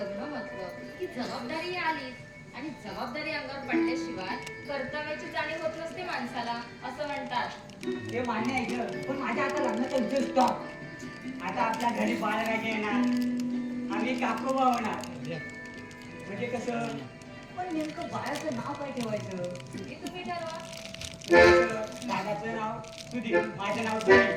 म्हटलं की जबाबदारी आलीच आणि जबाबदारी अंगावर पडल्याशिवाय कर्तव्याची जाणीव होत नसते माणसाला असं म्हणतात हे मान्य आहे ग पण माझ्या आता लग्नाचा उद्देश स्टॉप आता आपल्या घरी बाळराजे येणार आम्ही काकोबा होणार म्हणजे कसं पण नेमकं बाळाचं नाव काय ठेवायचं हे तुम्ही ठरवा दादाचं नाव सुधीर माझं नाव सुधीर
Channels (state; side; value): identical; both; correlation 1.00